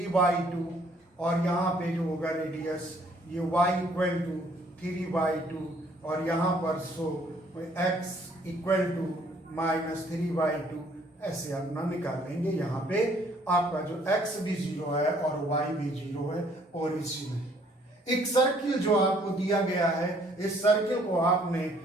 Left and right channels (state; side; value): normal; both; correlation 0.62